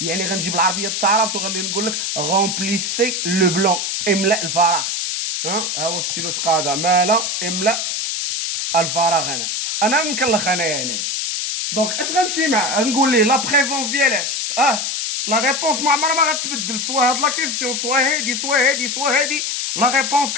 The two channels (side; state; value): left; noise; hiss, 1 dB below the sound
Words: يعني غنجيب العربيه التعارف وغادي نقول لك رومبليسي لو بلون املا الفراغ. ها هو ستيلو تقاضى مالا املا الفراغ. انا مكلخ انايا دونك اش غنمشي مع نقول ليه لا بريزونس ديالاش لا ريبونس ما عمرها ما غتبدل سوا هاد لا كيسيون سوا هادي لا ريبونس